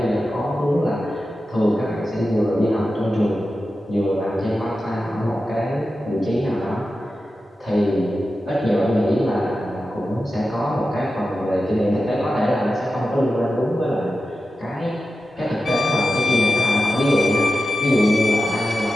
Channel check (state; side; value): normal; both; correlation 0.92